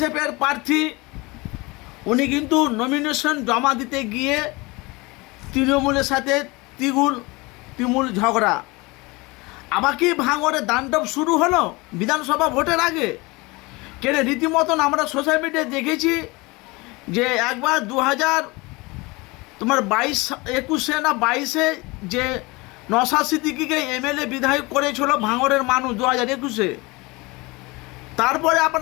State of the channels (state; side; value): quieter; right; 24.3 dB